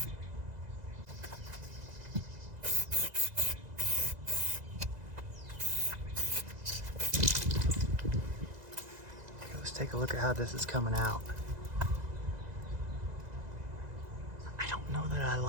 Take a look at how this is coming out. I don't know that I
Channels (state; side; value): late; left; 2.0 ms